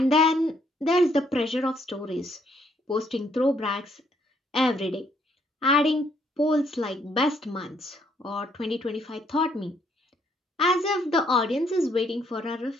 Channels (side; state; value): both; normal; correlation 0.69